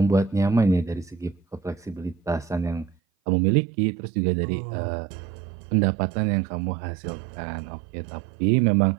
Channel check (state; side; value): drops out; left; at 3.0 s